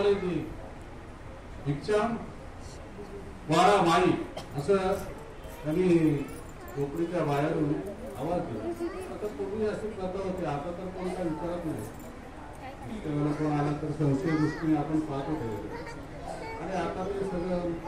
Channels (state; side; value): identical; both; correlation 1.00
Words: भिक्षा वाडा माई असं त्यांनी कोकणीच्या बाहेरून आवाज दिला. आता पूर्वी अशी प्रथा होती, आता तर कोण काय विचारत नाही. कोण आला तर संशय दृष्टीने आपण पाहतो आणि आता ते सगळं